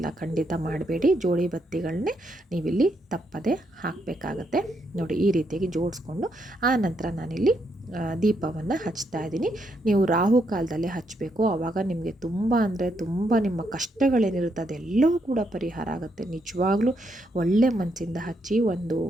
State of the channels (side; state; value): both; normal; correlation 0.77